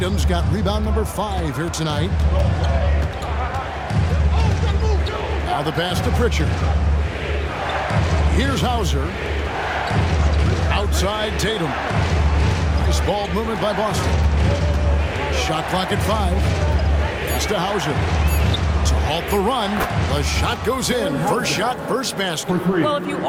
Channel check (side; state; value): both; identical; correlation 1.00